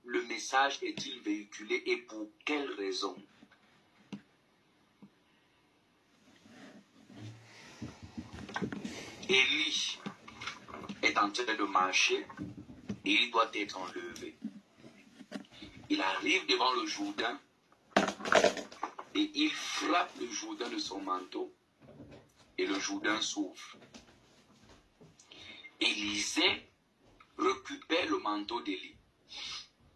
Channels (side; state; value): both; identical; correlation 1.00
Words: le message est-il véhiculé et pour quelle raison. Élie est en train de marcher et il doit être enlevé. Il arrive devant le Jourdain et il frappe le Jourdain de son manteau et le Jourdain s'ouvre. Élisée récupère le manteau d'Élie